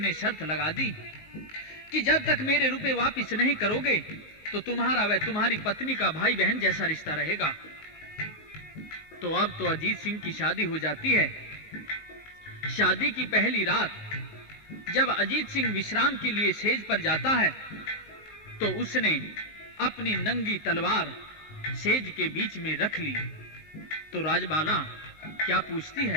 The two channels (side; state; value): right; late; 19 ms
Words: शर्त लगा दी कि जब तक मेरे रुपए वापस नहीं करोगे तो तुम्हारा व तुम्हारी पत्नी का भाई बहन जैसा रिश्ता रहेगा। तो अब तो अजीत सिंह की शादी हो जाती है। शादी की पहली रात जब अजीत सिंह विश्राम के लिए सेज पर जाता है तो उसने अपनी नंगी तलवार सेज के बीच में रख ली। तो राजबाला क्या पूछती